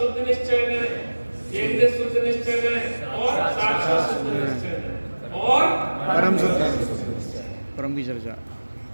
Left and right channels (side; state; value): both; inverted; correlation -1.00